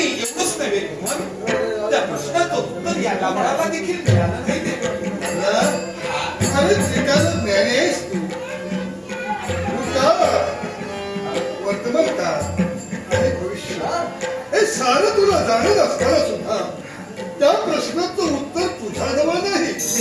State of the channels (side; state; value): both; identical; correlation 1.00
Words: एवढंच नव्हे मग त्या प्रश्नाचं उत्तर या गावळाला देखील मिळालं नाही. वर्तमान काळ आणि भविष्य हे सारं तुला जाणत असताना सुद्धा त्या प्रश्नाचं उत्तर तुझ्याजवळ नाही.